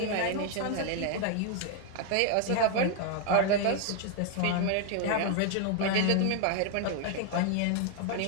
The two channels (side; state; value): both; different; correlation 0.00